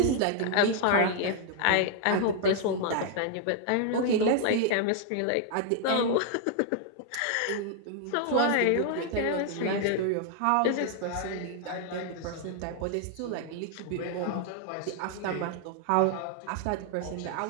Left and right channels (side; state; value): both; different; correlation 0.00